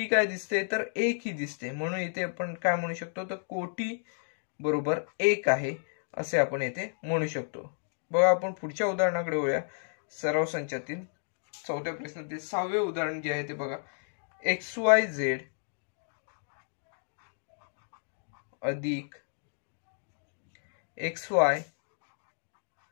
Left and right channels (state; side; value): silent; right; digital silence